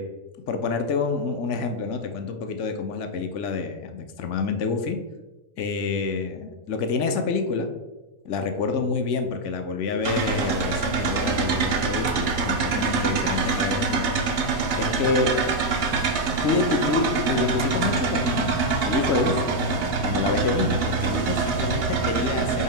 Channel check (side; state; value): left; late; 2.0 ms